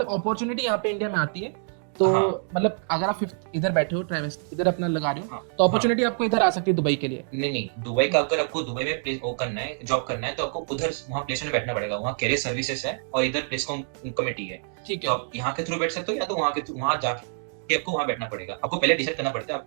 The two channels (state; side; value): silent; left; 61 dB below the other